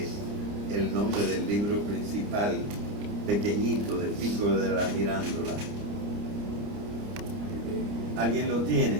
el nombre del libro principal, pequeñito, de Pico de la Mirándola? ¿Alguien lo tiene?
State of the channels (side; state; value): left; late; 29 ms